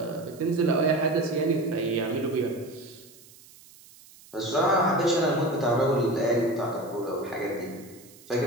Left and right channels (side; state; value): right; noise; hiss, 23 dB below the sound